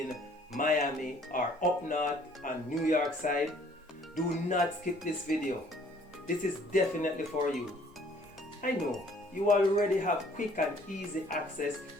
Miami or up north on New York side, do not skip this video. This is definitely for you. I know you already have quick and easy access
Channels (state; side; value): normal; both; correlation 0.58